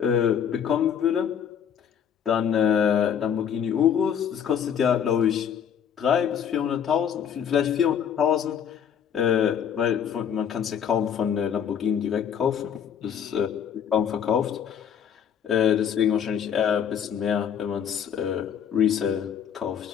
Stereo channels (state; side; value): quieter; right; 8.3 dB